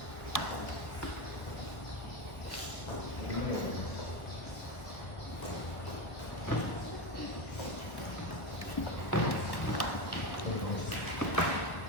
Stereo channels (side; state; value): right; late; 1.3 ms